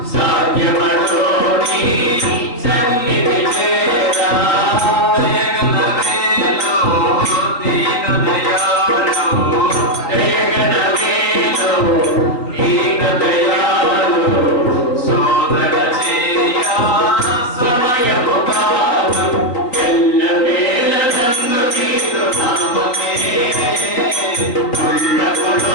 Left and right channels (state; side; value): late; right; 3.9 ms